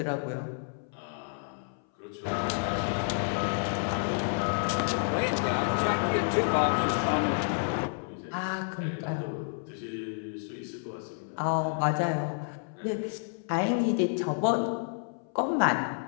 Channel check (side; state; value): right; silent; 58 dB below the other